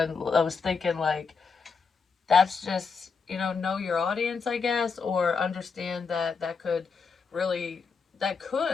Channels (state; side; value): quieter; right; 5.2 dB